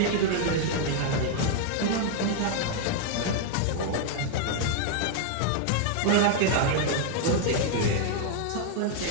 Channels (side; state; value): both; different; correlation 0.00